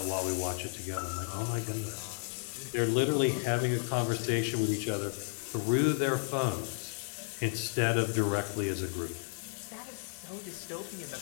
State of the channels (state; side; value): silent; right; digital silence